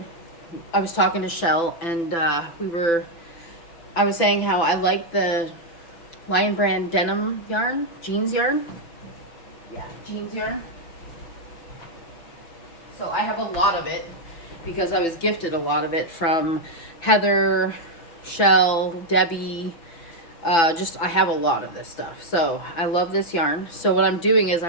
I was talking to Shell, and I was saying how I like the Lion Brand denim yarn, jeans yarn. Yeah, jeans yarn. So I have a lot of it, because I was gifted a lot of it from Heather, Shell, Debbie. I have a lot of this stuff. So I love this yarn. So what I'm doing is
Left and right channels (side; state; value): right; late; 6.0 ms